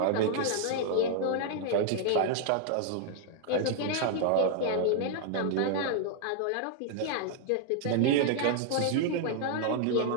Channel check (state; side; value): different; both; correlation -0.01